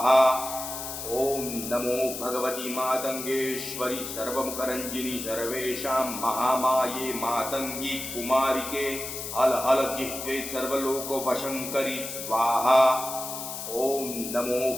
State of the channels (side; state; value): left; noise; hiss, 7 dB below the sound